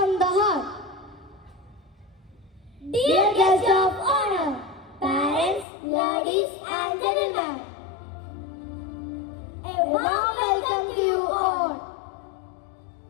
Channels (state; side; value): drops out; right; at 5.7 s